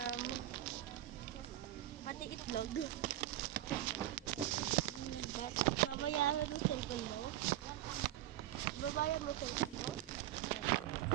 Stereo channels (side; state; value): left; quieter; 13.8 dB